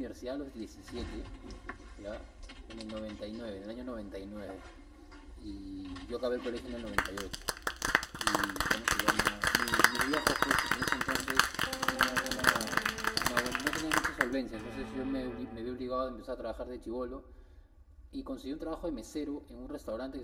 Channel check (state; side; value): identical; both; correlation 1.00